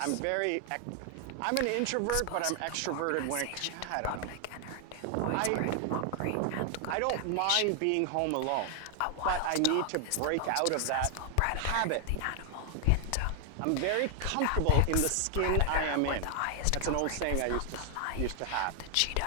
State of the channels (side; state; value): both; different; correlation 0.00